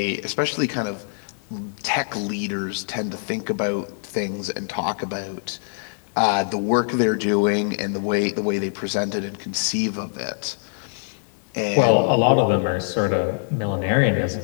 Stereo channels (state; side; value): silent; right; digital silence